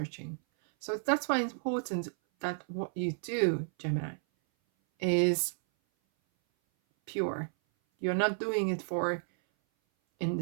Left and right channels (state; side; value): silent; left; 56 dB below the other